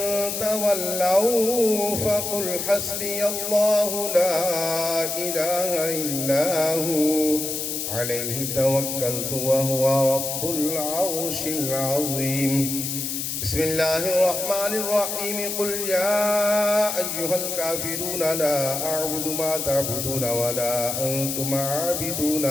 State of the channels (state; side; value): noise; left; hiss, 3 dB below the sound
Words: تولوا فقل حسبي الله لا إله إلا هو عليه توكلت وهو رب العرش العظيم. بسم الله الرحمن الرحيم. قل يا أيها الكافرون لا أعبد ما تعبدون ولا أنتم